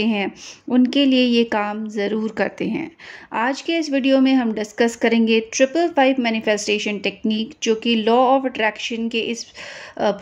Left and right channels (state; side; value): identical; both; correlation 1.00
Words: हैं उनके लिए ये काम ज़रूर करते हैं। आज के इस वीडियो में हम डिस्कस करेंगे 555 मैनिफेस्टेशन टेक्निक, जो कि लॉ ऑफ अट्रैक्शन के इस